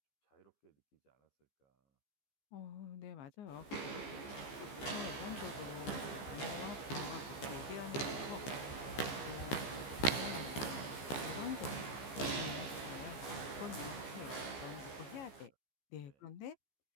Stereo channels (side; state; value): right; late; 15 ms